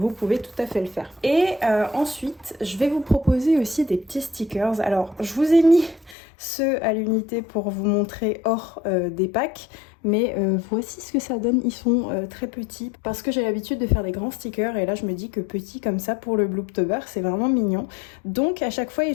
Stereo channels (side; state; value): right; drops out; at 6.2 s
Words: pouvez tout à fait le faire. Et ensuite je vais vous proposer aussi des petits stickers. Alors je vous ai mis ceux à l'unité pour vous montrer hors des packs, mais voici ce que ça donne. Ils sont très petits parce que j'ai l'habitude de faire des grands stickers, et là je me dis que petit comme ça pour le Blooptober c'est vraiment mignon. Donc à chaque fois ils